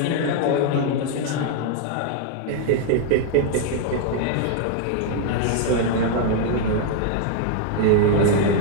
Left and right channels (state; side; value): different; both; correlation 0.00